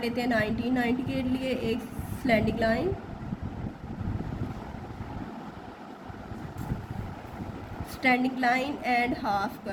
लेते हैं 90। 90 के लिए एक slanting line, standing line and half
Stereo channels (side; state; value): both; identical; correlation 1.00